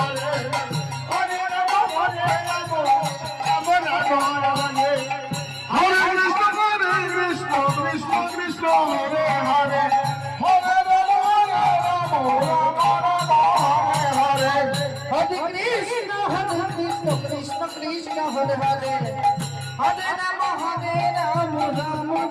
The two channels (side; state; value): both; identical; correlation 1.00